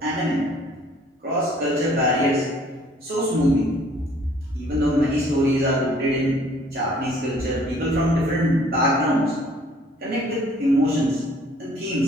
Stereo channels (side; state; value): both; normal; correlation 0.58